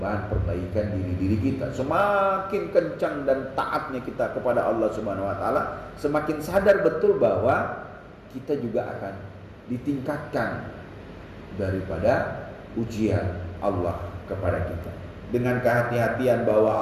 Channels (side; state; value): both; identical; correlation 1.00